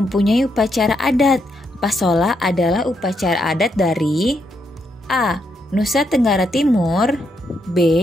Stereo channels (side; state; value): both; normal; correlation 0.79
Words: upacara adat. Pasola adalah upacara adat dari A. Nusa Tenggara Timur,